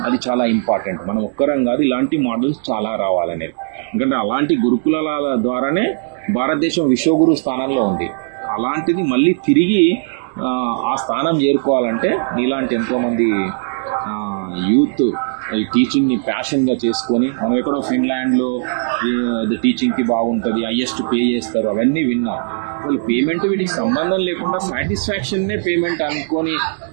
అది చాలా ఇంపార్టెంట్. మనం ఒక్కరం కాదు, ఇలాంటి మోడల్స్ చాలా రావాలనేది. ఎందుకంటే అలాంటి గురుకులాల ద్వారానే భారతదేశం విశ్వగురు స్థానంలో ఉంది. అలాంటిది మళ్ళీ తిరిగి ఆ స్థానం చేరుకోవాలంటే నీలాంటి ఎంతోమంది యూత్ ఈ టీచింగ్ని ప్యాషన్గా చేసుకొని, మనం ఎక్కడో ఫిన్లాండ్లో టీచింగ్కి బాగుంటుంది, హైయెస్ట్ పే చేస్తారు అవన్నీ విన్నాం. అసలు పేమెంట్ వీటికి సంబంధం లేకుండా సాటిస్ఫాక్షన్నే పేమెంట్ అనుకొని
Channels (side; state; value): left; silent; digital silence